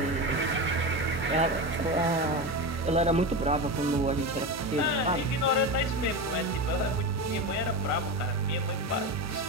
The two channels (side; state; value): left; noise; hum, 16 dB below the sound